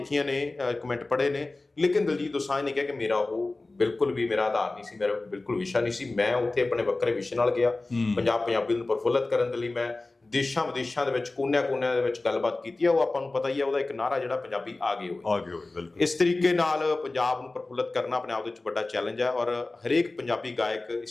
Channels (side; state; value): right; quieter; 3.2 dB